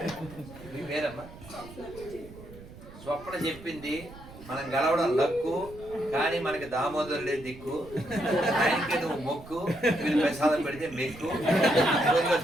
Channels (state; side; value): noise; right; rumble, 17 dB below the sound